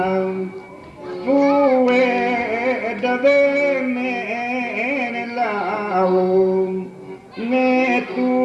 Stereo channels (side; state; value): both; identical; correlation 1.00